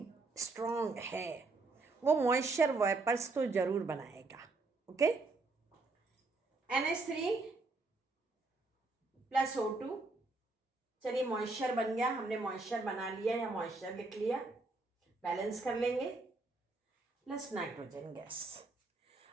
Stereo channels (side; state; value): left; quieter; 3.5 dB